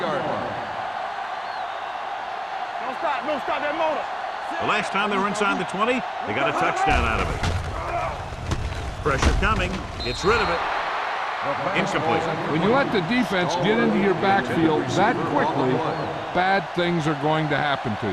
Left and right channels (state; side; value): identical; both; correlation 1.00